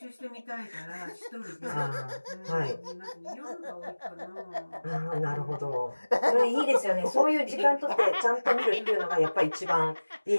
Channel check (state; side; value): inverted; both; correlation -1.00